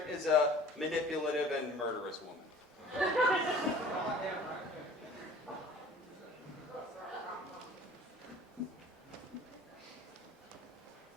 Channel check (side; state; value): both; normal; correlation 0.47